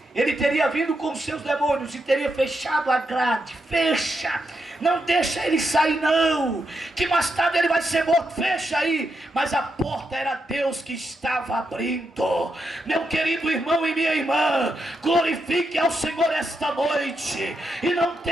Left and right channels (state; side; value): normal; both; correlation 0.83